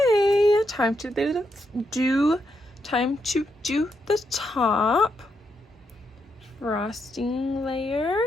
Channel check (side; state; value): both; normal; correlation 0.81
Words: time to do the top frosting layer.